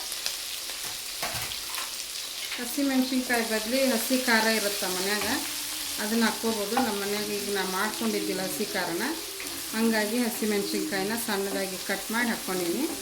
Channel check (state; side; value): identical; both; correlation 1.00